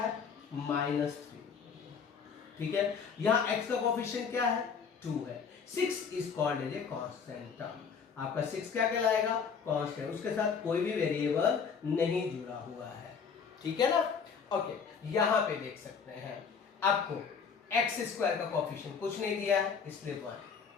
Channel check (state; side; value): quieter; right; 6.2 dB